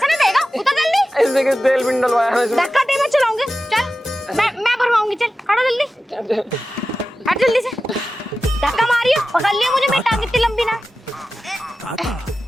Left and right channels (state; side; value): normal; both; correlation 0.94